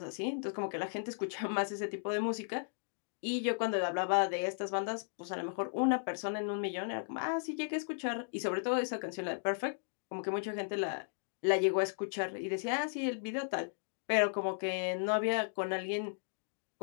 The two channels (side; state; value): right; silent; digital silence